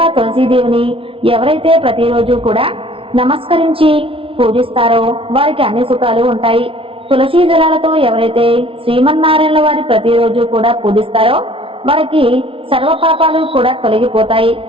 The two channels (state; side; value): late; left; 0.26 ms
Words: తులసీదేవిని ఎవరైతే ప్రతిరోజు కూడా నమస్కరించి పూజిస్తారో వారికి అన్ని సుఖాలు ఉంటాయి. తులసీ దళాలతో ఎవరైతే శ్రీమన్నారాయణ వారి ప్రతిరోజు కూడా పూజిస్తారో వారికి సర్వ పాపాలు కూడా తొలగిపోతాయి,